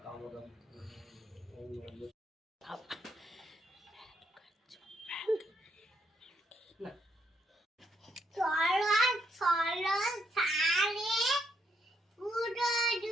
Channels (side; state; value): both; normal; correlation 0.75